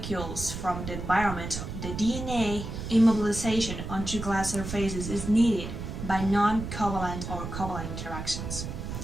from the environment, the DNA immobilization onto glass surfaces is needed by non-covalent or covalent interactions.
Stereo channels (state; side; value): noise; right; rumble, 7 dB below the sound